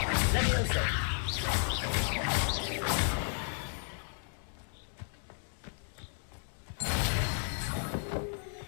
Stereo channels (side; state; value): right; silent; digital silence